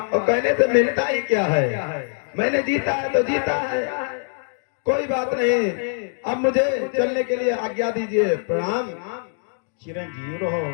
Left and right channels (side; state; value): right; silent; 64 dB below the other